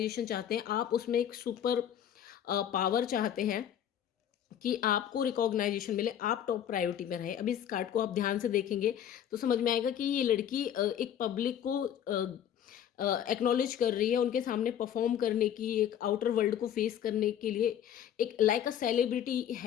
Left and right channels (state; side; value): quieter; right; 9.9 dB